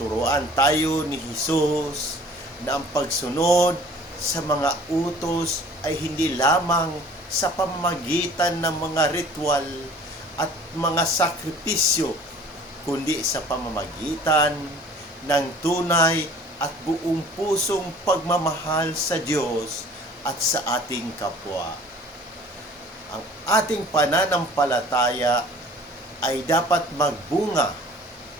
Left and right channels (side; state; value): both; normal; correlation 0.49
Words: tayo ni Jesus na ang pagsunod sa mga utos ay hindi lamang sa pamamagitan ng mga ritual at mga sakripisyo, kundi sa pamamagitan ng tunay at buong pusong pagmamahal sa Diyos at sa ating kapwa. Ang ating pananampalataya ay dapat magbunga